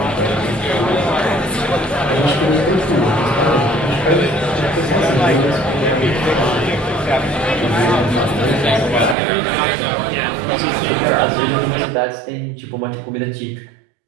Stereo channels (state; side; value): drops out; left; at 9.2 s